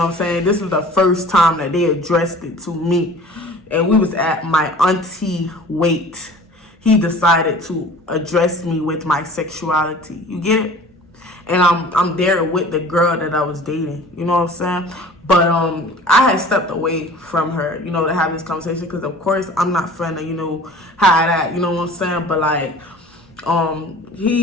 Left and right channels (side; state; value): both; normal; correlation 0.45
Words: what I'm saying? This is the first time that they addressed it to me. And we was at my auntie Wait. He decided to address me with my sexuality. You get it? And I'm there with the girl that I was dating, you know what I'm saying? But I had stepped away from her, you know, to have this conversation, because of course I'm not finna, you know, hide that, you know what I'm saying? But like